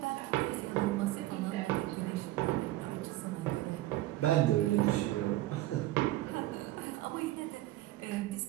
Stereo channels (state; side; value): quieter; left; 16.5 dB